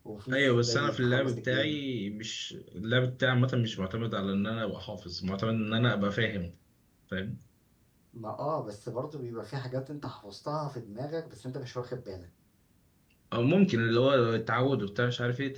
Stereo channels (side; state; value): both; identical; correlation 1.00